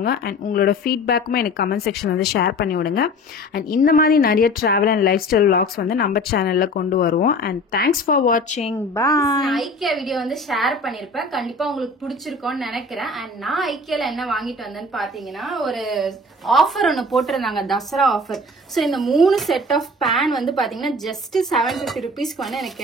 அண்ட் உங்களோட ஃபீட்பேக்குமே எனக்கு கமெண்ட் செக்ஷன் வந்து ஷேர் பண்ணி விடுங்க. அண்ட் இந்த மாதிரி நிறைய travel and life style vlogs வந்து நம்ம சேனலில் கொண்டு வருவோம். அண்ட் தேங்க்ஸ் ஃபார் வாட்சிங். பாய். ஐக்கியா வீடியோ வந்து ஷேர் பண்ணிருப்பேன். கண்டிப்பா உங்களுக்கு பிடிச்சிருக்கும் நினைக்கிறேன். அண்ட் நான் ஐக்கியால என்ன வாங்கிட்டு வந்தேன்னு பாத்தீங்கன்னா ஒரு ஆஃபர் ஒன்னு போட்டிருந்தாங்க, தசரா ஆஃபர். சோ இந்த 3 செட் ஆஃப் பேன் வந்து பாத்தீங்கன்னா ஜஸ்ட் 750 ருபீஸ்க்கு வந்து எனக்கு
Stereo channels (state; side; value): normal; both; correlation 0.41